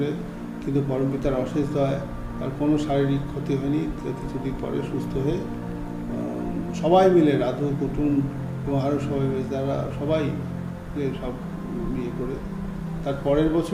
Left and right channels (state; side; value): identical; both; correlation 1.00